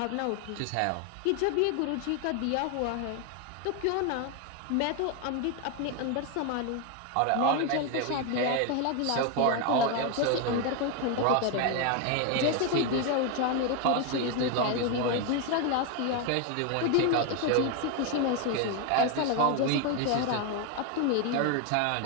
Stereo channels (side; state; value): both; different; correlation 0.01